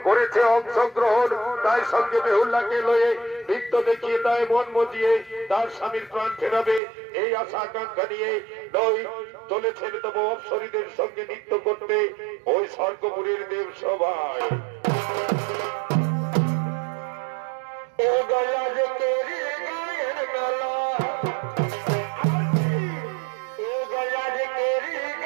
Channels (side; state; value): left; drops out; at 6.8 s